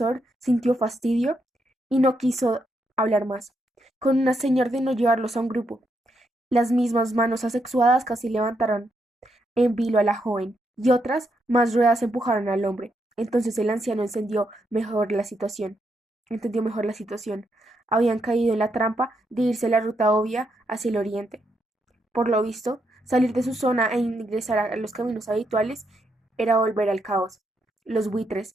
sintió fastidio y no quiso hablar más. Con una seña ordenó llevarlos a un grupo. Las mismas manos asexuadas casi levantaron en vilo a la joven, y otras más ruedas empujaron al hombre. Entonces el anciano entendió mejor la situación. Habían caído en la trampa de irse la ruta obvia hacia el oriente. Por lo visto, salir de su zona e ingresar a los caminos habituales era volver al caos. Los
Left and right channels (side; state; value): both; normal; correlation 0.79